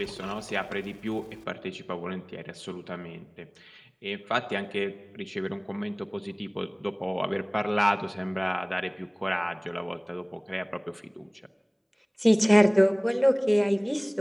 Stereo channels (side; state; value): both; identical; correlation 1.00